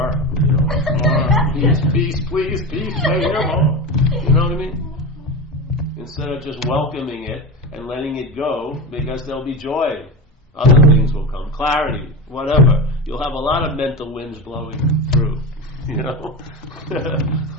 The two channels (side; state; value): both; normal; correlation 0.23